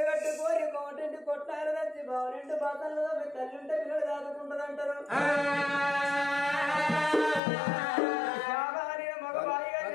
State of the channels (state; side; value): drops out; right; at 7.4 s